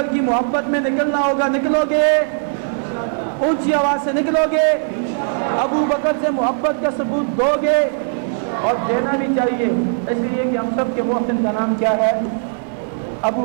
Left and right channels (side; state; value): left; silent; digital silence